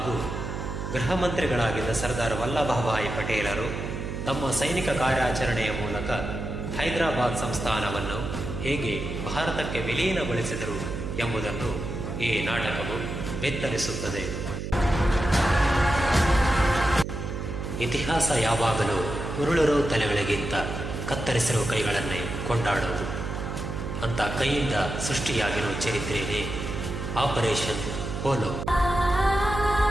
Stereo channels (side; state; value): right; noise; hum, 5 dB below the sound